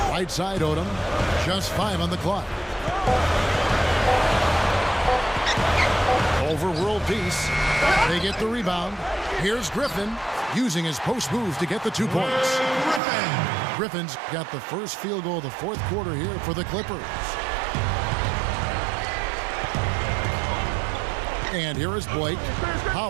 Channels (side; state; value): left; drops out; at 13.0 s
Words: Right side Odom. Just 5 on the clock. Over world peace. They get the rebound. Here's Griffin using his post moves to get the 2 points. Griffin's got the first field goal of the 4th quarter here for the Clippers. And here is Blake.